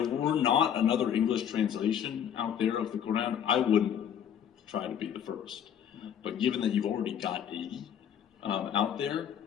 were not another English translation out there of the Quran, I wouldn't try to be the first. But given that you've already got 80 out there,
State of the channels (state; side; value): quieter; right; 9.0 dB